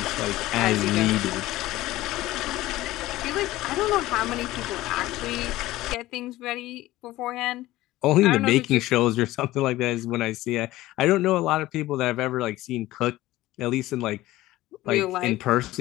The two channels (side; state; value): right; quieter; 16.8 dB